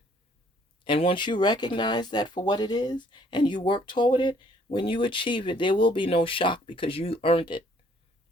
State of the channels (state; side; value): normal; both; correlation 0.62